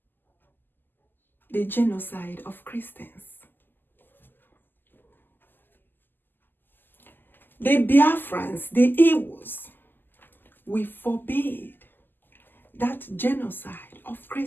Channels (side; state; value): right; late; 0.091 ms